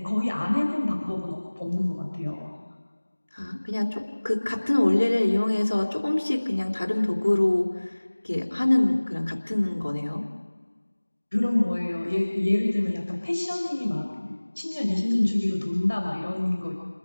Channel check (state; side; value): inverted; both; correlation -1.00